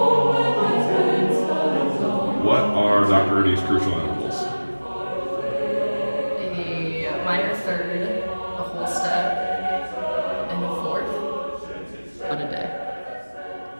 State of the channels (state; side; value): inverted; both; correlation -1.00